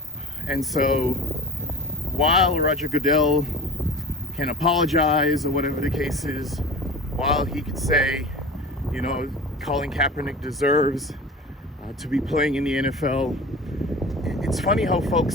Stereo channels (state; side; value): normal; both; correlation 0.36